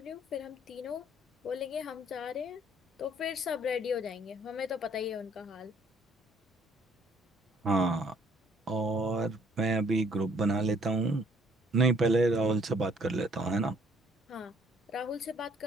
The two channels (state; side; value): normal; both; correlation 0.62